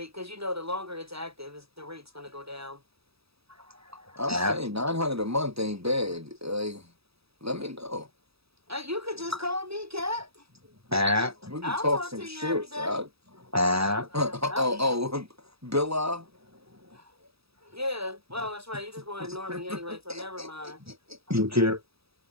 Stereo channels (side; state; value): left; late; 0.77 ms